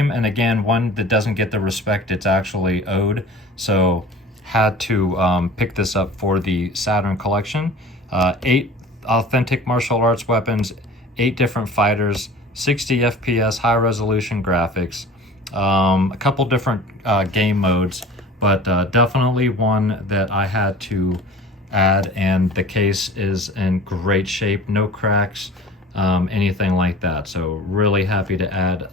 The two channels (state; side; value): normal; both; correlation 0.41